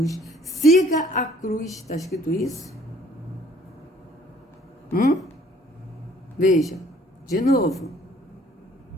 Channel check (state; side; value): normal; both; correlation 0.58